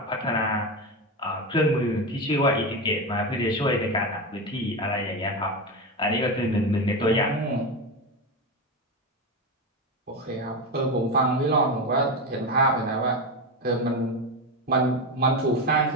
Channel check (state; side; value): normal; both; correlation 0.17